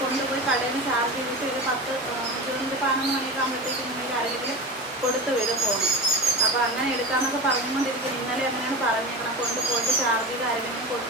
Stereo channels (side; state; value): both; normal; correlation 0.27